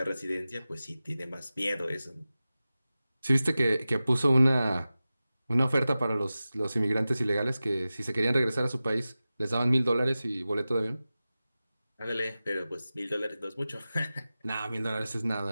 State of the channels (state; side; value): inverted; both; correlation -0.95